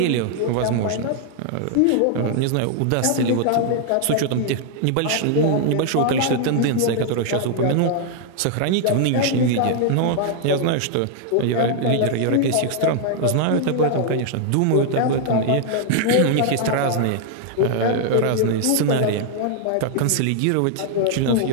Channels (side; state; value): both; different; correlation 0.00